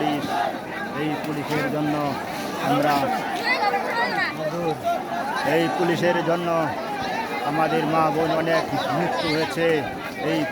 এই পুলিশের জন্য আমরা এই পুলিশের জন্য আমাদের মা বোন অনেক মৃত্যু হয়েছে। এই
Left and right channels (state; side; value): identical; both; correlation 1.00